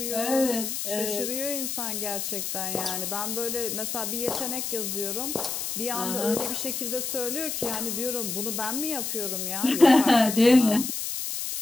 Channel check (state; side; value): noise; left; hiss, 3 dB below the sound